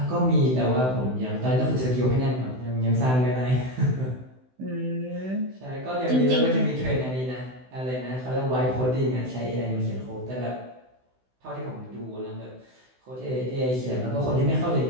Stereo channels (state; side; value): late; left; 16 ms